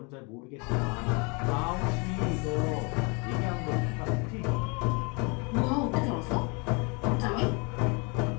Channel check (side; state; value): right; quieter; 31.5 dB